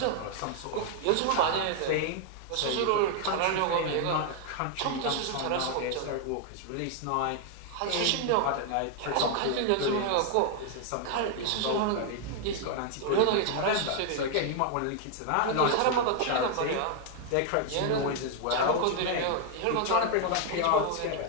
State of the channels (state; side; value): different; both; correlation 0.00